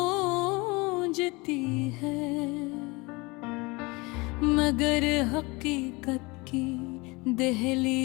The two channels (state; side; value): quieter; right; 25.1 dB